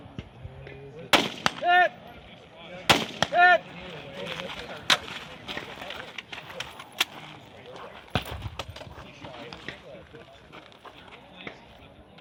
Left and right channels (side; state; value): both; identical; correlation 1.00